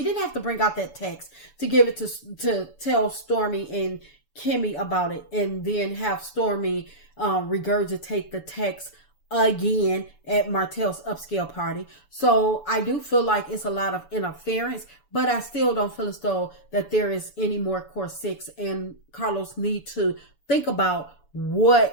didn't have to bring out that text to give it to tell Stormy and Kimmy about it, and then have Stormy regurgitate the text again at Martell's upscale party. So I do feel like it's a lot of interference, but I still don't feel as though that there is any more core six, and Carlos need to think about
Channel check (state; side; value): late; right; 7.0 ms